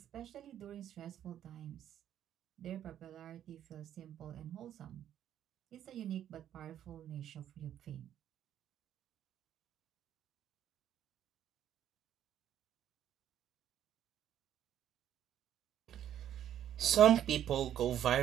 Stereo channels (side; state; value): left; quieter; 10.7 dB